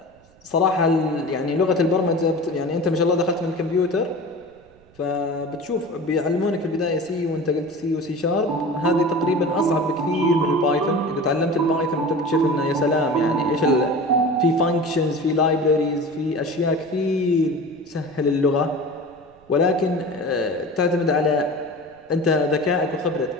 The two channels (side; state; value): right; noise; rumble, 30 dB below the sound